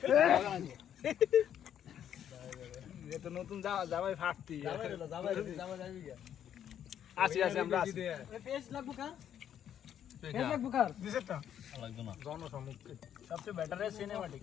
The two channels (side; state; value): right; quieter; 9.7 dB